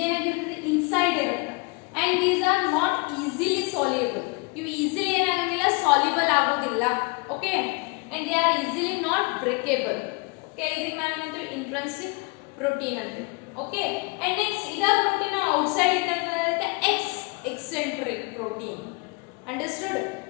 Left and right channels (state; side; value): quieter; right; 29.9 dB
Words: inside ಇರುತ್ತೆ and these are not easily soluble. ಇವು easily ಏನಾಗೋದಿಲ್ಲ soluble ಆಗೋದಿಲ್ಲ. Okay, and they are easily not breakable. Okay, ಇದಕ್ಕೆ ನಾವು ಏನಂತೀವಿ intrinsic protein ಅಂತೀವಿ. Okay, and next ಇದ protein outside ಇದ್ದಂತೆ eccentric protein. Understood?